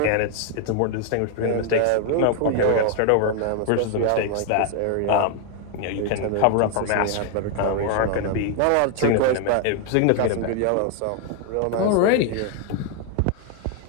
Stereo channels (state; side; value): different; both; correlation 0.00